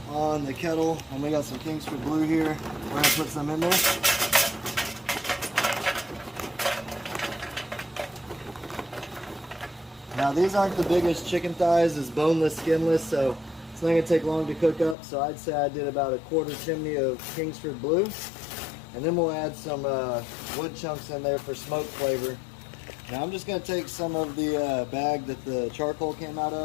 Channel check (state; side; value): drops out; right; at 15.0 s